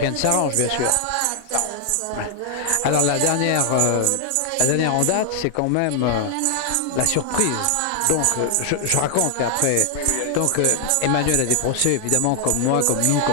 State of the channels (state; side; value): different; both; correlation 0.00